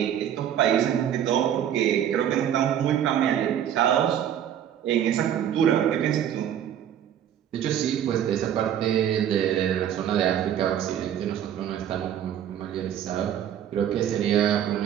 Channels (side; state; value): left; quieter; 10.0 dB